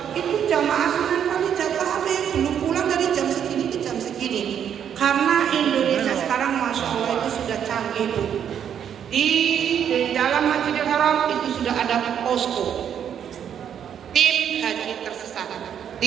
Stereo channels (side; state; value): left; quieter; 8.8 dB